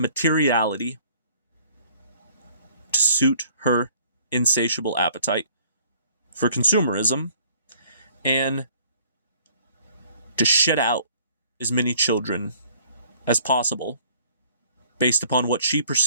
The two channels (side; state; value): both; inverted; correlation -0.57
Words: to suit her insatiable appetite for consumerism, and to shit out as many children as possible based upon what she